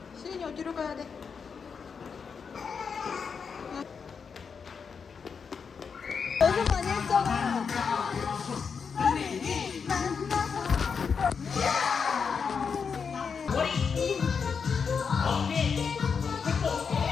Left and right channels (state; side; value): quieter; right; 6.0 dB